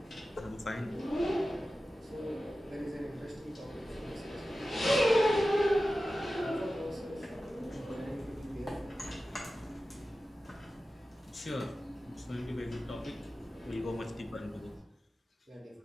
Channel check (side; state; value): both; normal; correlation 0.94